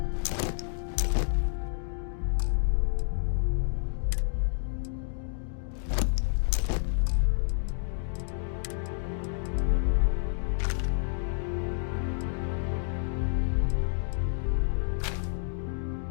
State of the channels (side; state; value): right; silent; digital silence